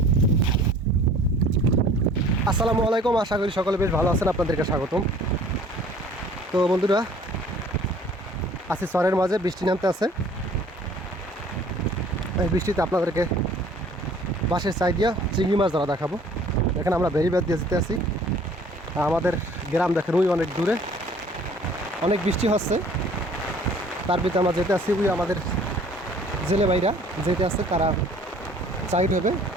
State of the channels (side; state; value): both; normal; correlation 0.53